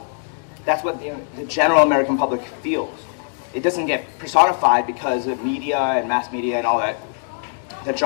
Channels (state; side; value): silent; right; digital silence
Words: That's what the general American public feels. It doesn't get personified because of media and mass media and all that